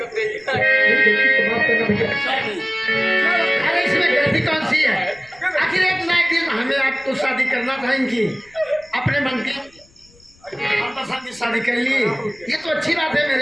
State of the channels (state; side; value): noise; left; rumble, 29 dB below the sound